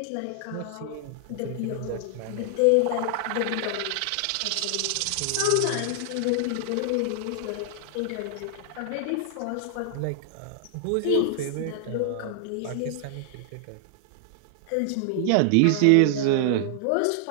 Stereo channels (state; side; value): different; both; correlation 0.00